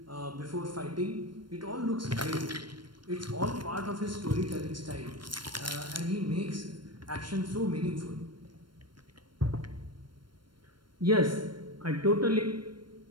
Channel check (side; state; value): left; late; 0.72 ms